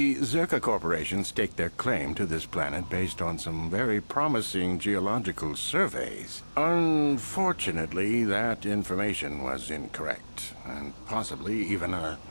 Zerka Corporation staked their claim to this planet based on some very promising geological surveys. Unfortunately, that information was incorrect, and possibly even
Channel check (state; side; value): inverted; both; correlation -1.00